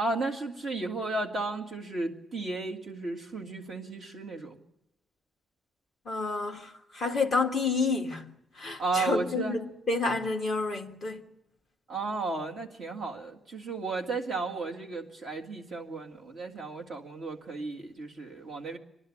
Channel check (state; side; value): normal; both; correlation 0.62